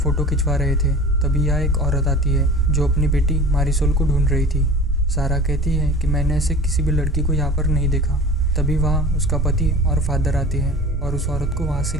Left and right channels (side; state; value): both; normal; correlation 0.38